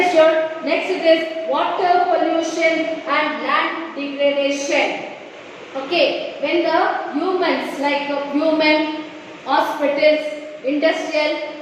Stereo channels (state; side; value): identical; both; correlation 1.00